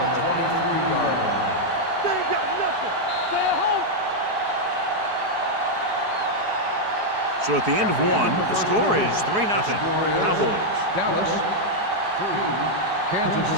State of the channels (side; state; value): left; late; 4.8 ms